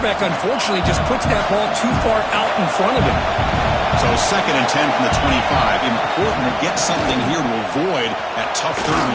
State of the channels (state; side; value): identical; both; correlation 1.00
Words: unfortunately, just puts that ball too far out in front of him. So 2nd and 10 from the 25. Important to get something here to avoid that tough 3rd and